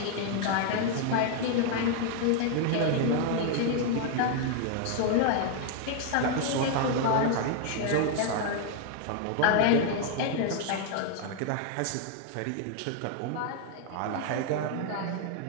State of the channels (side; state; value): both; different; correlation 0.00